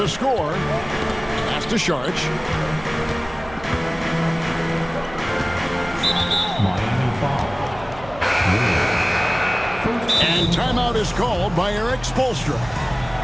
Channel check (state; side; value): noise; right; hum, 18 dB below the sound